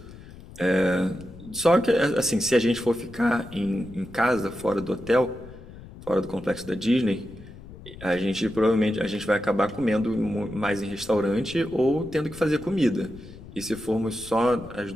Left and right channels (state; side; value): noise; left; rumble, 17 dB below the sound